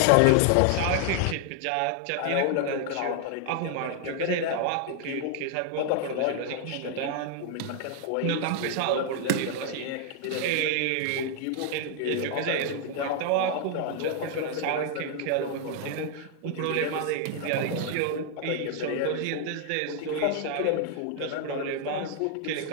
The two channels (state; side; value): different; both; correlation 0.00